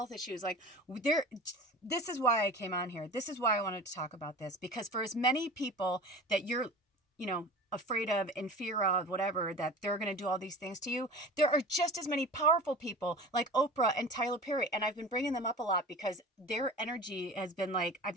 issues. Like, this is why I came on here. This is why I wanted to talk about this, because for as many people that you're, afraid of, in fear of, whatever, that they're going to do all these things to you, there are just as many powerful people like Oprah and Tyler Perry. And I've been bringing them up a lot because their energy has been like, I've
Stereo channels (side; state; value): both; normal; correlation 0.36